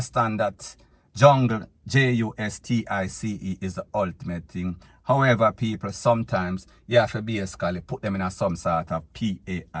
that jungle, JUSTICE, is the ultimate thing. However, people, sometimes you have to basically put them in a some sort of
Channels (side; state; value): both; identical; correlation 1.00